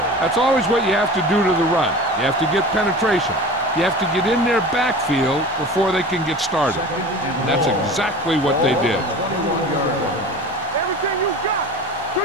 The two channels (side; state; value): both; normal; correlation 0.36